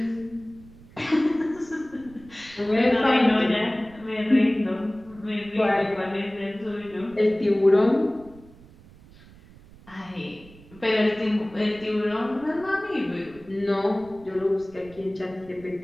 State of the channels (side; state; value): right; noise; rumble, 23 dB below the sound